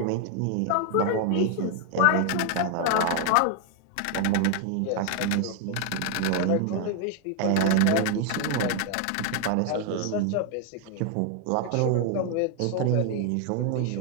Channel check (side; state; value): both; different; correlation 0.00